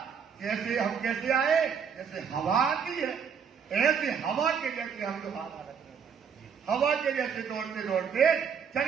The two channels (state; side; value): quieter; left; 6.8 dB